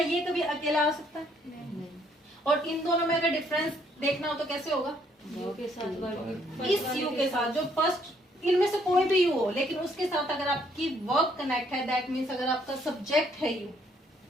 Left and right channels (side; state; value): both; normal; correlation 0.67